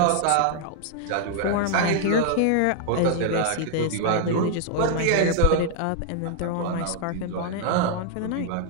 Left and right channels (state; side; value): different; both; correlation 0.00